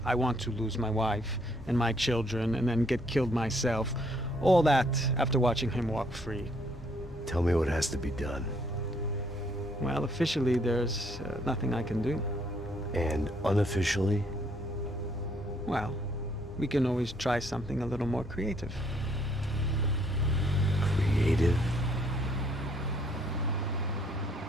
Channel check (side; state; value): both; normal; correlation 0.67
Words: I want to lose my wife and my children and then get killed myself. All that after watching him walk free. Tell me what has to be done. Well, officially, there's nothing I can do. And unofficially? Well, we can always try something a little more creative. Creative?